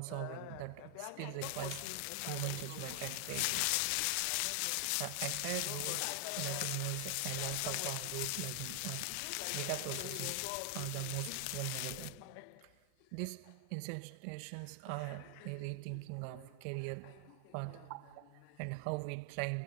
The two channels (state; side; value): different; both; correlation 0.00